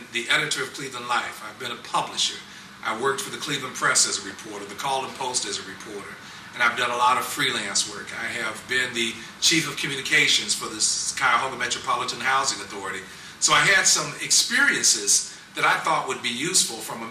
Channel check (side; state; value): both; identical; correlation 1.00